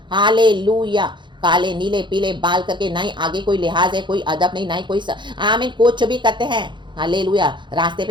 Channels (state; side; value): late; left; 0.23 ms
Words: हालेलुया। काले नीले पीले बाल करके, ना ही आगे कोई लिहाज है, कोई अदब नहीं, ना ही कोई आमीन कुछ भी करते हैं। हालेलुया। रास्ते